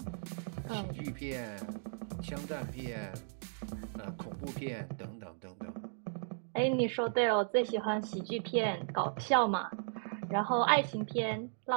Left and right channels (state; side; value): silent; left; digital silence